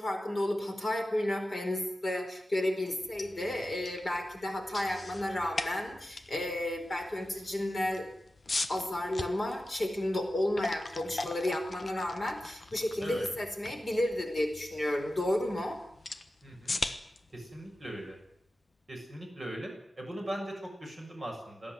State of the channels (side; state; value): both; normal; correlation 0.94